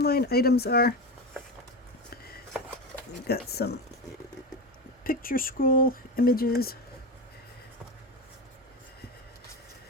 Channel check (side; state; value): both; normal; correlation 0.20